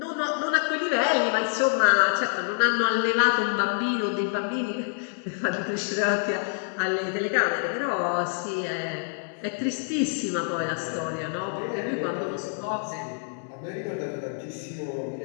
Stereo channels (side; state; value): right; silent; 60 dB below the other